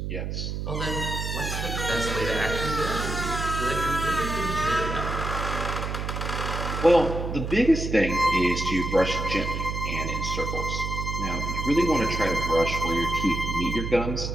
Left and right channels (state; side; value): noise; right; hum, 4 dB below the sound